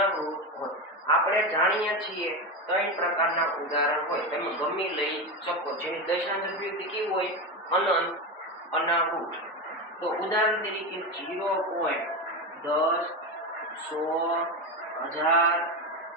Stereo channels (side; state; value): both; normal; correlation 0.17